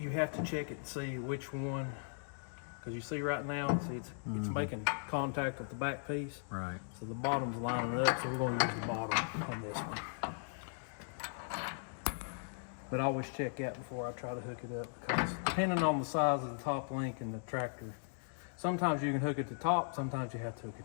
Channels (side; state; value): right; silent; digital silence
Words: you have to check it to see which one, because you see right now, see it's making contact with the back piece. Right. So the bottom's lining up, so we're going to use the bottom on this one. But I always check that before I try to hook it up, because depending on the size of the top link in the tractor, sometimes you can hook it to top, sometimes you have to hook